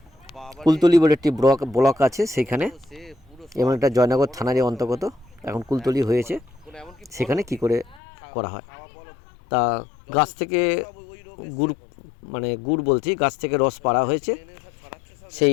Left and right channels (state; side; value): drops out; right; at 8.0 s